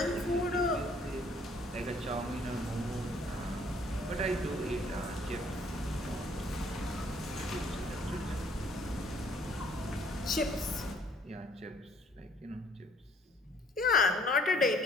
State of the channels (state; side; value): normal; both; correlation 0.60